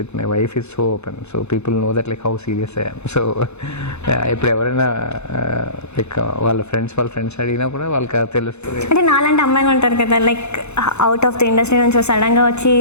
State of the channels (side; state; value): right; late; 0.81 ms